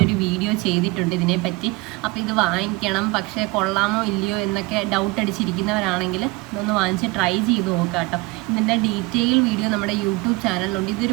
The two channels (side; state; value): left; quieter; 23.6 dB